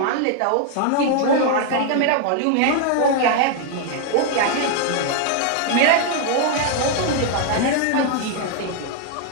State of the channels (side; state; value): both; different; correlation 0.00